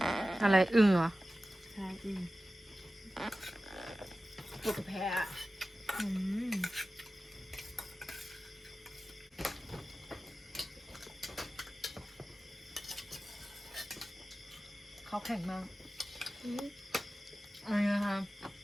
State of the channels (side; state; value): both; normal; correlation 0.95